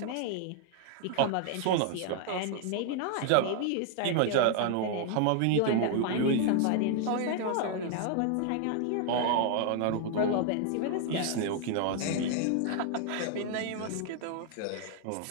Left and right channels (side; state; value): both; different; correlation 0.00